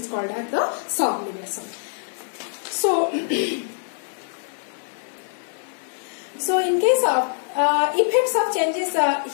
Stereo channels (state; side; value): silent; right; digital silence